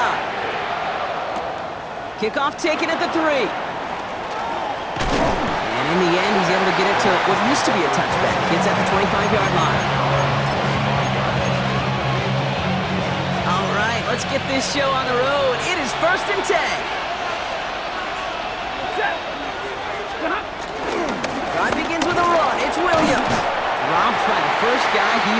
Kickoff taken at the 3. And in the end, he's able to get it to what used to be a touchback. It's at the 25-yard line. All right, let's get this show on the road. It is 1st and 10. Drive begins with a run. It's Williams. Robbed by the first guy he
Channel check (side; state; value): both; identical; correlation 1.00